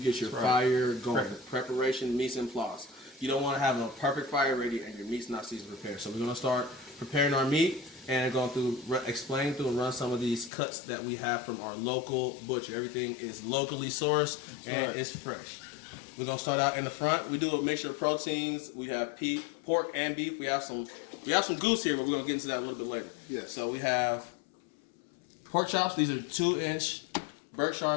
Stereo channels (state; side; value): drops out; right; at 10.5 s